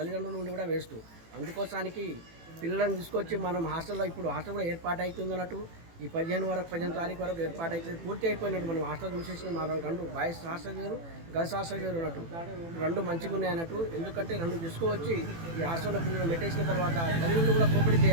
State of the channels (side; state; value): left; late; 18 ms